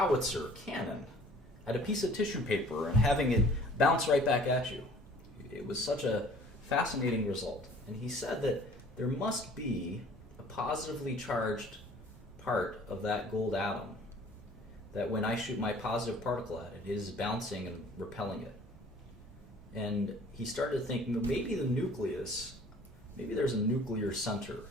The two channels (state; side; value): normal; both; correlation 0.51